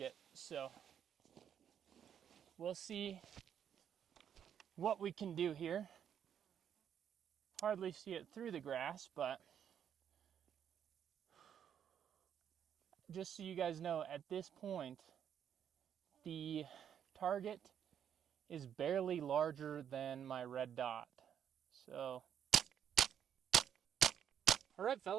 so we'll see what we can do here. Hardly see it through the grass, but just so you guys know, at this point, the target is barely larger than my red dot. So, all right,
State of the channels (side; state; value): left; quieter; 8.9 dB